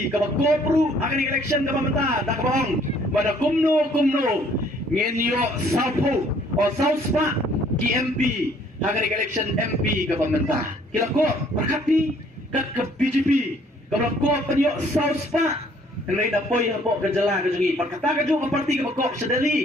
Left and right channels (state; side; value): normal; both; correlation 0.61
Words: ka bagopru akan election ka pamata dak bong pada kumno ngenyo sapo o sauspa KMP akan election MP ka pamata kila ko berkati ka BJP ka ko panyo sauspa hendak dapoi hapo kejala kejungi perkata keju ke parti ke pokok